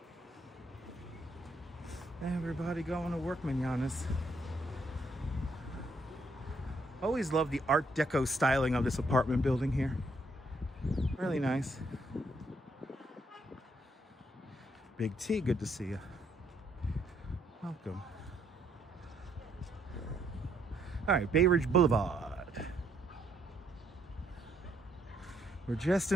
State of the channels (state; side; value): normal; both; correlation 0.72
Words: Everybody going to work, mananas. Always love the Art Deco styling of this apartment building here. Really nice. Big T, good to see you. Welcome. All right, Bay Ridge Boulevard. We're just